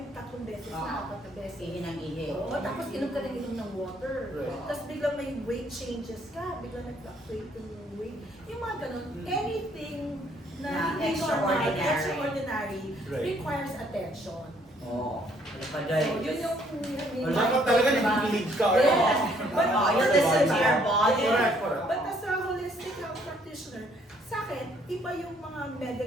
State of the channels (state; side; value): normal; both; correlation 0.65